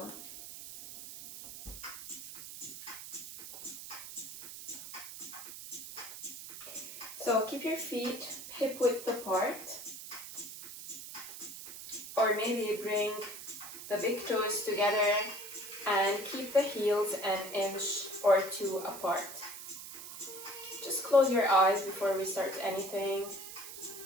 So keep your feet hip width apart, or maybe bring the big toes together and keep the heels an inch or two apart. Just close your eyes before we start anything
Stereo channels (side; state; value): right; noise; hiss, 11 dB below the sound